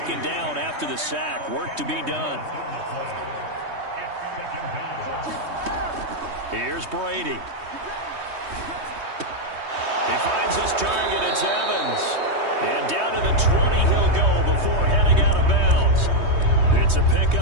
down after the sack. Work to be done. Here's Brady. He finds his target. It's Evans. And down to the 20 he'll go before heading out of bounds. It's a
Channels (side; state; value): left; late; 3.2 ms